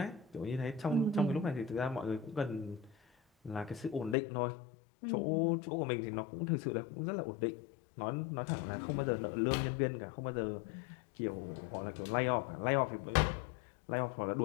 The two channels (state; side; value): drops out; right; at 4.2 s